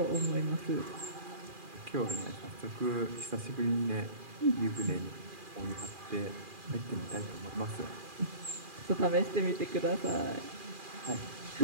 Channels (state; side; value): late; left; 2.4 ms